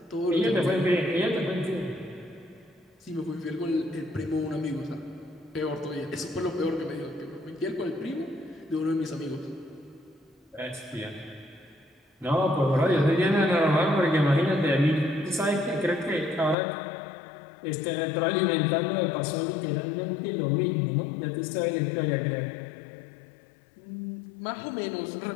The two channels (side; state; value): right; drops out; at 16.6 s